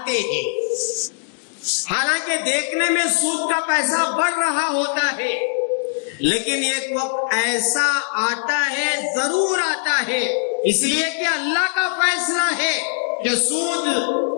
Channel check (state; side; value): silent; right; digital silence